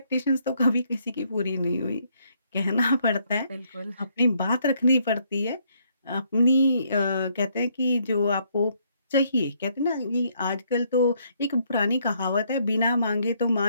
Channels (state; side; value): inverted; both; correlation -0.70